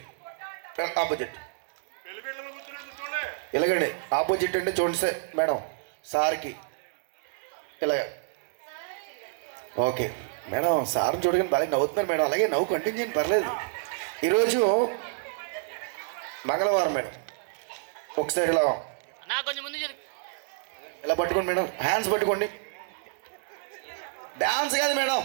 ఆపోజిట్ ఇలాగండి. ఆపోజిట్ అంటే చూడండి సార్ మేడం సార్కి ఇలాగ ఓకే మేడం. సార్ని చూడగానే బాగా నవ్వుతున్నారు మేడం. అలాగే నవ్వు కంటిన్యూ చేయండి పర్లేదు. ఈరోజు మంగళవారం మేడం. ఒకసారి ఇలా ఇలా పట్టుకోండి మేడం. హ్యాండ్స్ పట్టుకోండి. డ్యాన్స్ కాదు మేడం.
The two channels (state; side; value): silent; left; 59 dB below the other